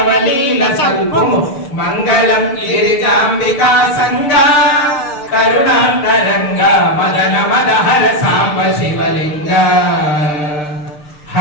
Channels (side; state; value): right; late; 6.7 ms